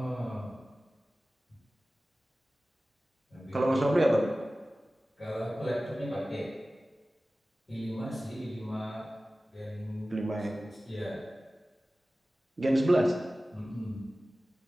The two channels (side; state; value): both; normal; correlation 0.97